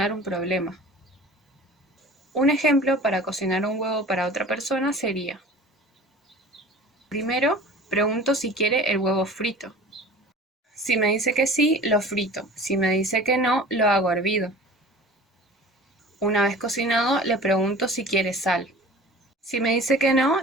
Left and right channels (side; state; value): both; normal; correlation 0.42